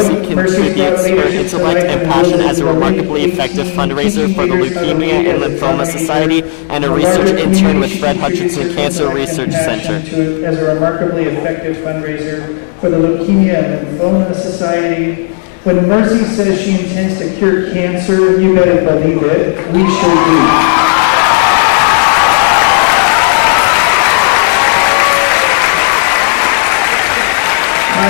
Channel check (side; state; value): right; silent; digital silence